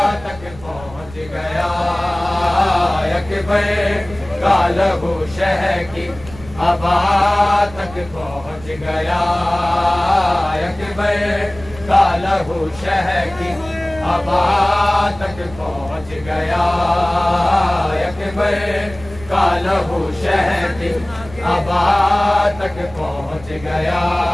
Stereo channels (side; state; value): right; noise; rumble, 18 dB below the sound